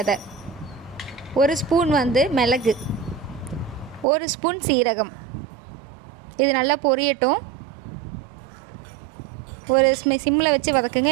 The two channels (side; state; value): left; drops out; at 4.0 s